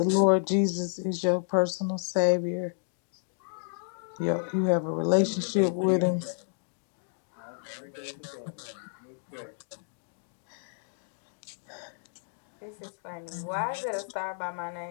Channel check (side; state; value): right; silent; digital silence